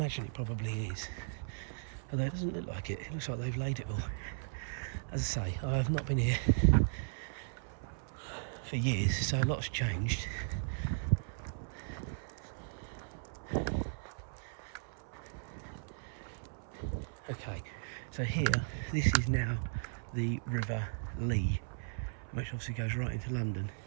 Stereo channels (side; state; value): left; silent; 53 dB below the other